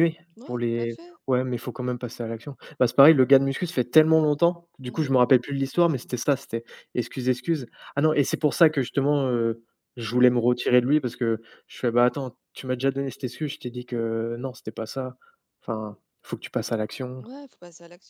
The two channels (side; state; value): both; identical; correlation 1.00